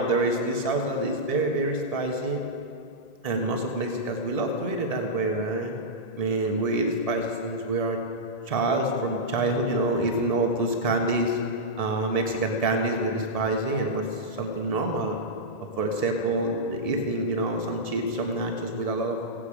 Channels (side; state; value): right; late; 1.7 ms